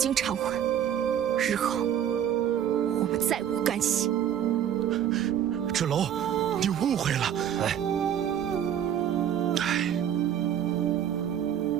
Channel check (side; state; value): left; quieter; 9.7 dB